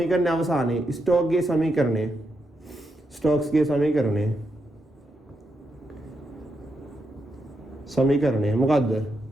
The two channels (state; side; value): normal; both; correlation 0.83